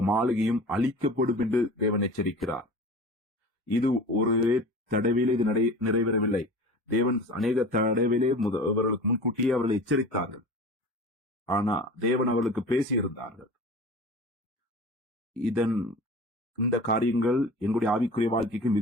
மாளிகையும் அழிக்கப்படும் என்று தேவன் எச்சரிக்கிறார். இது ஒரு தடவையிலே இது நிறைவேறவில்லை. தேவன் அநேக தடவையிலே அவர்களுக்கு முன்கூட்டியே அவர்களை எச்சரித்தார்கள். ஆனா தேவன் அவர்களுக்கு பேசியிருந்தார்கள். இதன் இந்த காரியங்கள் எங்களுடைய ஆவிக்குரிய வாழ்க்கைக்கு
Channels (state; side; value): normal; both; correlation 0.37